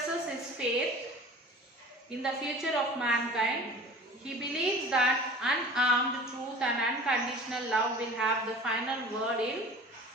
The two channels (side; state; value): both; normal; correlation 0.41